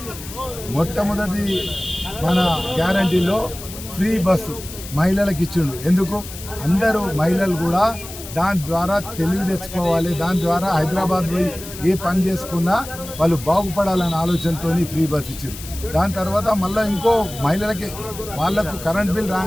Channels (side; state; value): left; noise; hiss, 13 dB below the sound